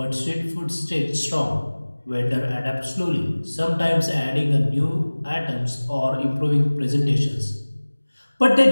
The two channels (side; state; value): both; inverted; correlation -1.00